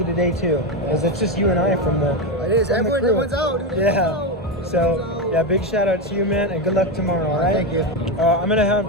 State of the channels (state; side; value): normal; both; correlation 0.11